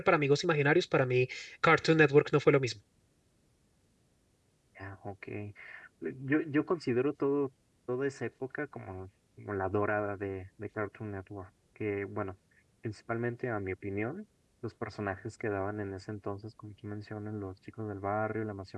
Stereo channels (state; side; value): identical; both; correlation 1.00